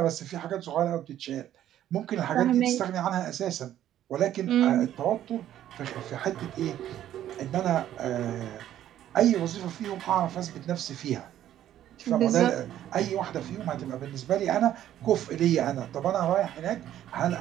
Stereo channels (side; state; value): left; quieter; 11.9 dB